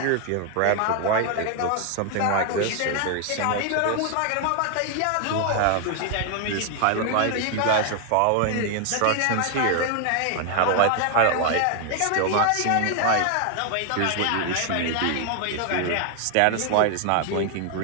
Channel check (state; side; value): different; both; correlation 0.00